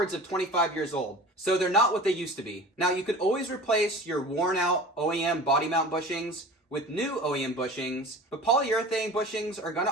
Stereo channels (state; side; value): normal; both; correlation 0.39